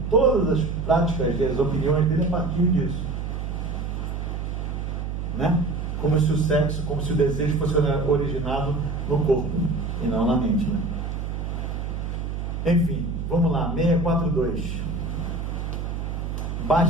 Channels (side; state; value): right; noise; hum, 4 dB below the sound